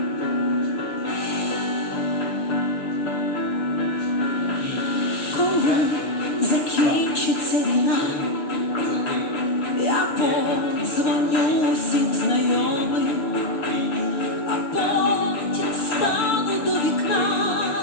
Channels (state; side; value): late; right; 6.8 ms